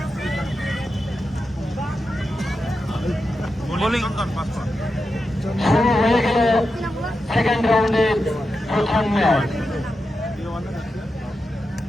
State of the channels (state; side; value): normal; both; correlation 0.89